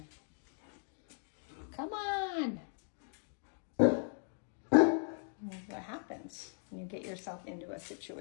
Come on. What happens when you get yourself into a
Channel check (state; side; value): silent; right; 53 dB below the other